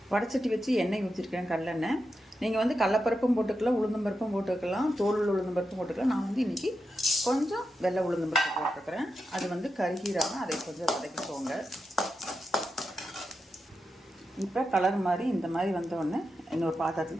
வடைச்சட்டி வச்சு எண்ணெய் ஊற்றிருக்கேன், கடலெண்ணெய். நீங்கள் வந்து கடலப்பருப்பும் போட்டுக்கலாம், உளுந்தம்பருப்பும் போட்டுக்கலாம், தோல் உளுந்தம்பருப்பும் போட்டுக்கலாம். நான் வந்து இன்றைக்கி கொஞ்சம் வெள்ளை உளுந்தம்பருப்பு போட்டுருக்குறேன். அது வந்து கருகீராமல் அதை கொஞ்சம் வதக்கிக்கோங்க. இப்போ கலர் மாதிரி இந்த மாதிரி வந்தோடனே இன்னொரு பாத்திரத்தில்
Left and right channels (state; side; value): normal; both; correlation 0.88